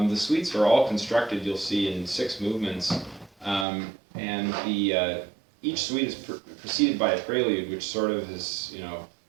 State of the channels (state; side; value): drops out; left; at 3.7 s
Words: suites are all constructed, you'll see, in 6 movements, and each suite is preceded by a prelude, which sort of is,